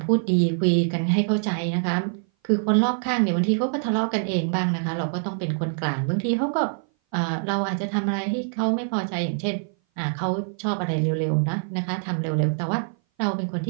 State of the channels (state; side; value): silent; left; 58 dB below the other